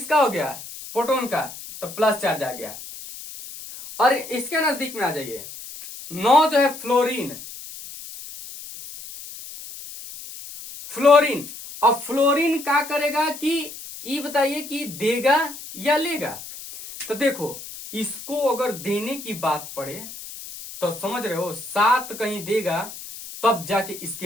हो गया, प्रोटॉन का, तो प्लस चार्ज आ गया। और इसके नजदीक में आ जाइए, 9 जो है फ्लोरीन। अब फ्लोरीन क्या करेगा कि ये बताइए कि देगा या लेगा। तो देखो, इसको अगर देने की बात पड़े तो समझ रहे हो, 7 कहीं देगा तब जाके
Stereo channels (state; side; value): noise; left; hiss, 13 dB below the sound